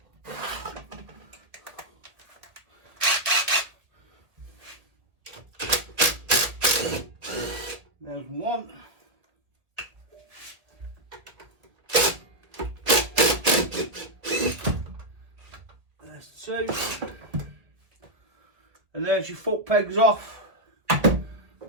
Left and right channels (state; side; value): late; left; 1.6 ms